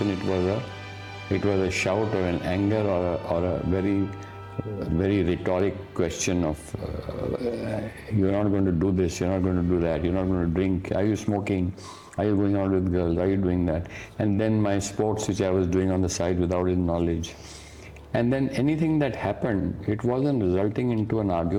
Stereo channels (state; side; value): identical; both; correlation 1.00